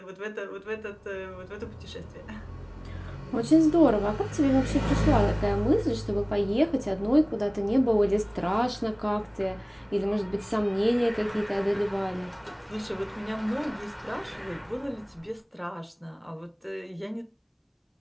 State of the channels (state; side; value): identical; both; correlation 1.00